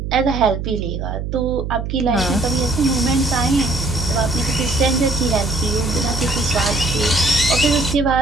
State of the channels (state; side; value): noise; right; hum, 5 dB below the sound